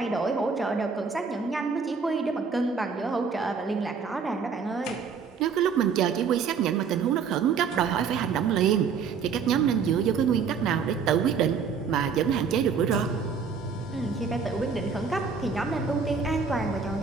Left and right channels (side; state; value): left; quieter; 5.9 dB